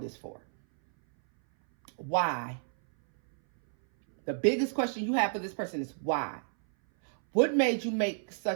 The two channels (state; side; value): silent; left; 58 dB below the other